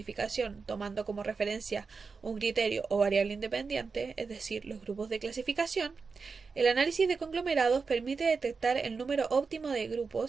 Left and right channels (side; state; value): left; quieter; 4.9 dB